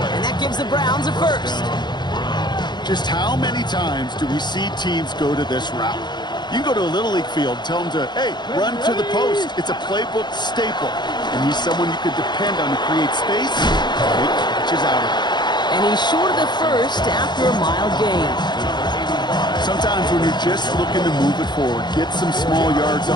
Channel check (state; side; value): late; right; 0.21 ms